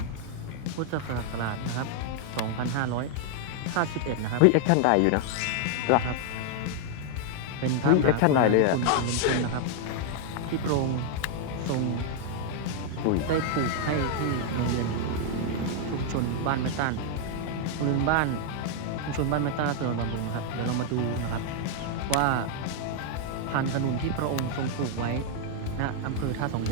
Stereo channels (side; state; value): both; different; correlation 0.00